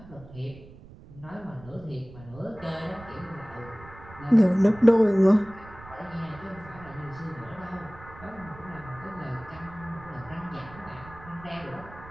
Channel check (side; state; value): right; noise; rumble, 19 dB below the sound